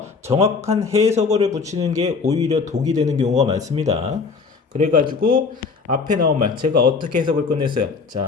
정확한 해석어를 붙이는 게 오히려 독이 되는 경우가 많습니다. 그래가지고 앞에 나온 말 제가 어떻게 해석을 끝냈어요.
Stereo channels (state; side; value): quieter; right; 4.8 dB